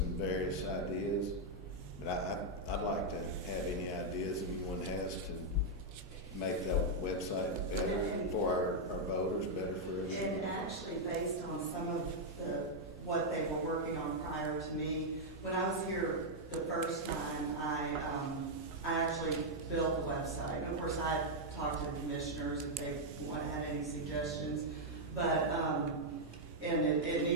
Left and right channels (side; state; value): both; normal; correlation -0.03